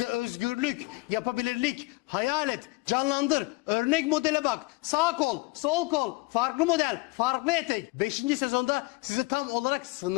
özgürlük, yapabilirlik, hayal et, canlandır, örnek modele bak, sağ kol, sol kol, farklı model, farklı etek. 5. sezonda size tam olarak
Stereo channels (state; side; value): quieter; right; 24.1 dB